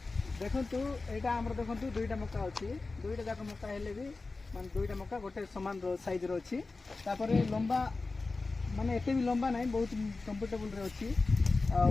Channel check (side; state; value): right; quieter; 3.7 dB